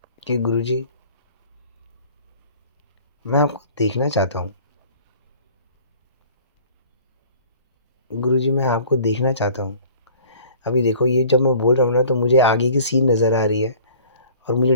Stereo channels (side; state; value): both; inverted; correlation -0.49